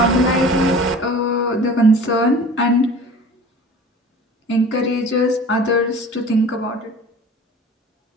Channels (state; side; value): normal; both; correlation 0.42